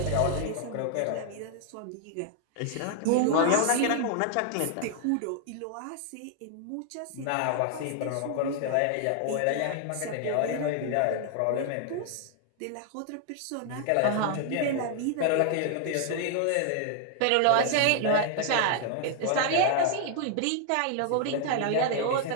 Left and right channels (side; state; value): both; different; correlation 0.00